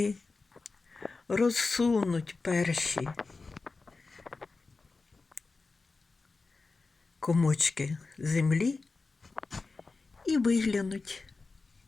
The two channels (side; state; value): right; quieter; 3.9 dB